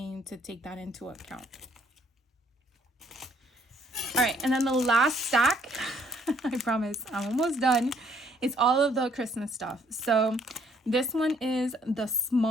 to take that into account. All right, and then the last stack, I promise I'm almost done. It's all of the Christmas stuff. So this one is the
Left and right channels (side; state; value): both; normal; correlation 0.64